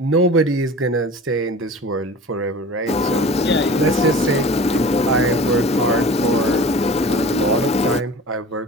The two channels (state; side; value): normal; both; correlation 0.40